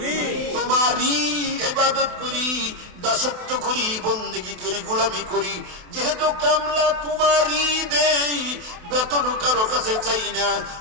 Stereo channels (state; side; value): late; left; 28 ms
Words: তোমারই ইবাদত করি দাসত্ব করি বন্দেগী করি গোলামি করি যেহেতু কামলা তোমারই দেই বেতন কারো কাছে চাই না